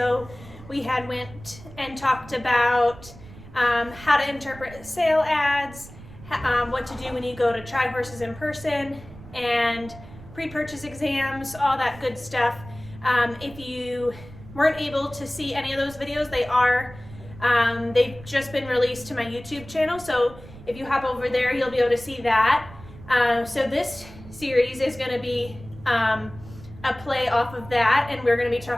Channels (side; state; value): right; noise; rumble, 18 dB below the sound